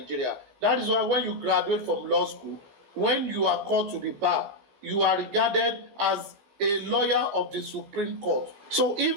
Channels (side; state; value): left; late; 15 ms